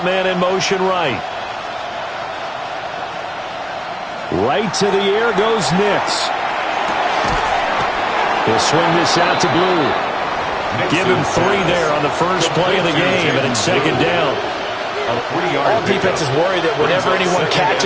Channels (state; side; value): identical; both; correlation 1.00